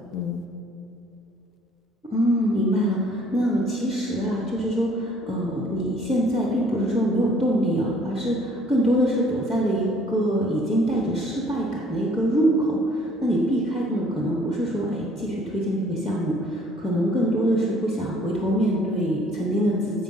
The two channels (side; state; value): both; normal; correlation 0.58